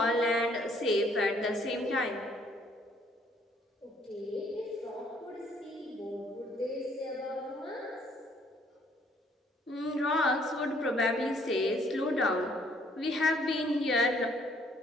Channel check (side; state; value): both; normal; correlation 0.64